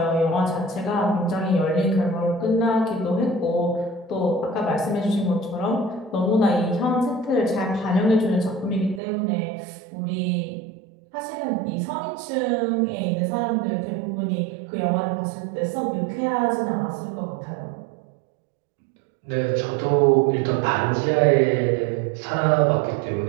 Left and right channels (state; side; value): drops out; left; at 9.0 s